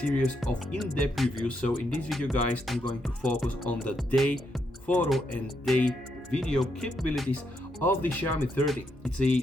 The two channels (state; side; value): normal; both; correlation 0.79